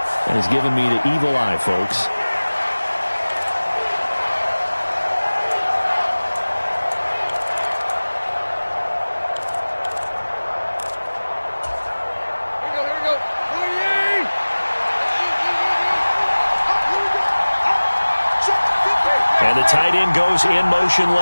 and has given me the evil eye, folks. And the tight end goes in motion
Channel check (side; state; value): both; inverted; correlation -1.00